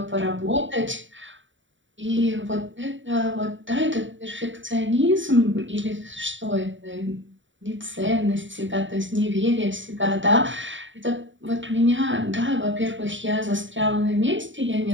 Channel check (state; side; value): late; left; 0.55 ms